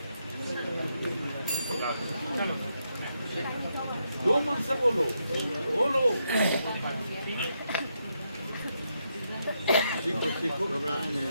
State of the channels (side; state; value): both; inverted; correlation -0.80